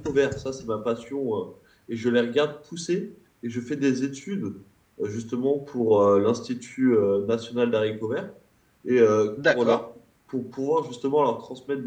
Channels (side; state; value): both; identical; correlation 1.00